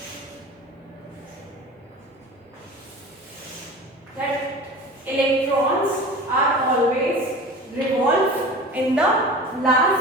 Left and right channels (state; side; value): normal; both; correlation 0.36